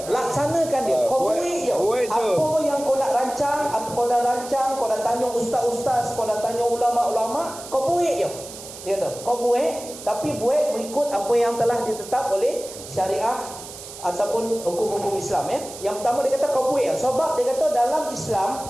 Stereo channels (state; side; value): noise; right; hiss, 14 dB below the sound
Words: laksanakan dia. Kau buik je. Apa yang kau nak rancang, apa kau dah rancang, kau dah tanya ustaz-ustaz, kau dah tanya ulama-ulama, kau buik je. Dia kata, kau buik, tapi buik mengikut apa yang telah ditetap oleh syariah ataupun hukum-hukum Islam ya. Yang pertama dia kata kau buik. Sebab dia kata dalam Islam,